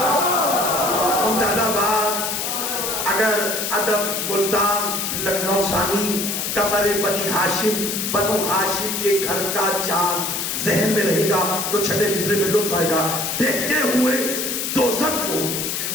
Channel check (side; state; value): left; noise; hiss, 2 dB below the sound